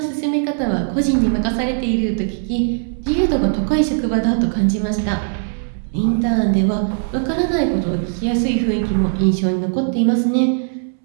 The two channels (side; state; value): left; silent; 67 dB below the other